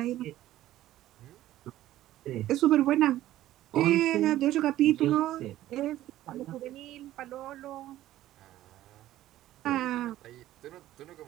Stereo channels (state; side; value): quieter; left; 14.2 dB